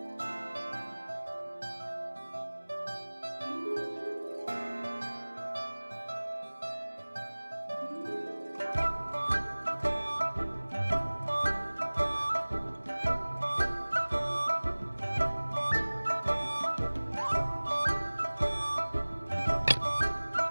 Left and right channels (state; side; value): inverted; both; correlation -1.00